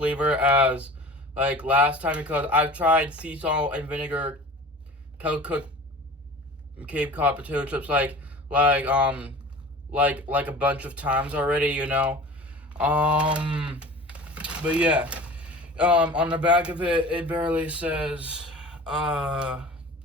as like last time, because I've tried sea salt and vinegar Kettle Cooked Cape Cod potato chips like a bunch of times already, you know. But yeah, on the back of it, it barely says,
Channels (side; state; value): both; normal; correlation 0.39